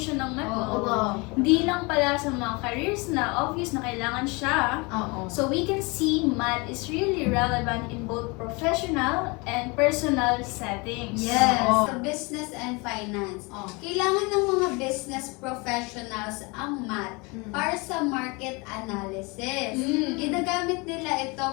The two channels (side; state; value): right; quieter; 27.7 dB